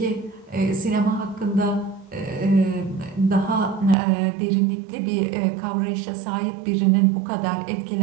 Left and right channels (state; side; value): drops out; left; at 4.0 s